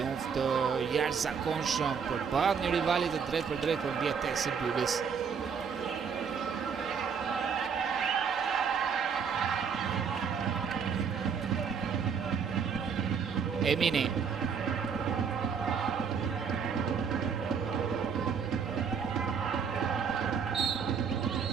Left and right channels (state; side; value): quieter; left; 6.5 dB